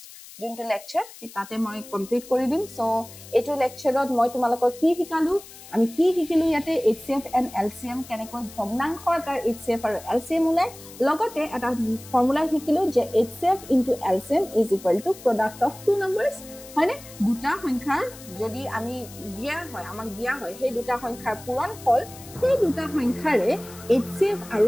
যোনটো লেকচাৰ তাতে মই কমপ্লিট কৰি দিম সো এটো লেকচাৰত মই তোমালোকক কি শিকালো আমি কি শিকিলো ইয়াতে HCF and LCM কেনেকৈ ভগ্নাংশৰ তাৰ HCF আৰু LCM উলাই লগতে এটা ফৰ্মুলা শিকিলো যে HCF into LCM is equal to product of two numbers মানে দুটা সংখ্যাৰ যদি আমি দিয়া হয় আমাক দিয়া হয় সেই দুটা সংখ্যাৰ পূৰণ ফল সেই দুটা সংখ্যাৰে HCF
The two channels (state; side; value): noise; left; hiss, 18 dB below the sound